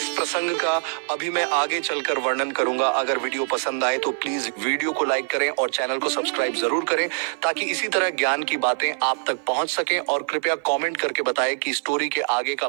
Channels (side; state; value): left; silent; 55 dB below the other